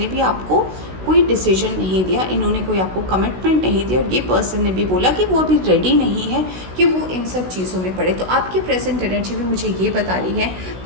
भी आपको कोई डिसीजन नहीं दिया, इन्होंने कोई आपको कमिटमेंट नहीं दिया, और ये पर्सन ने भी बोला कि वो अभी रेडी नहीं है कि वो इन सब चीज़ों में पड़े। तो आपकी प्रेजेंट एनर्जी भी मुझे ये बता रही है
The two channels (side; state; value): left; late; 16 ms